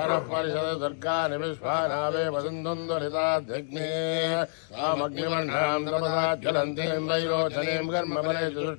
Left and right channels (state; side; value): silent; right; digital silence